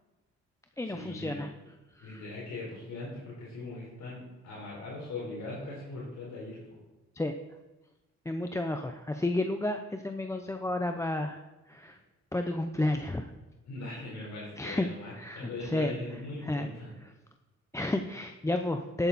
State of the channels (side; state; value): both; normal; correlation 0.76